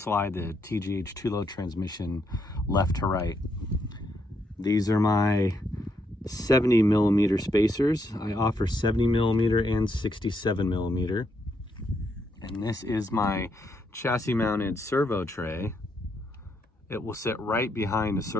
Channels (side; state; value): both; normal; correlation 0.77